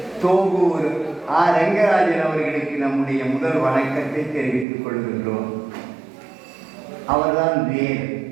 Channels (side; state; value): left; drops out; at 4.7 s